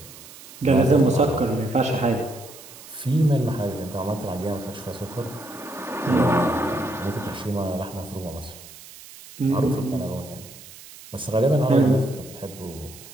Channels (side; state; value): right; noise; hiss, 18 dB below the sound